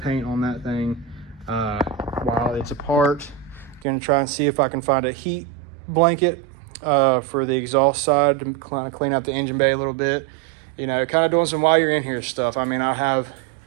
on that thing while it's apart. Gonna try and see if I can find a heat blanket for the exhaust side to kind of clean out the engine bay a little bit. You know, kind of doing some while you're in here stuff. I mean, I have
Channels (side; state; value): left; drops out; at 3.9 s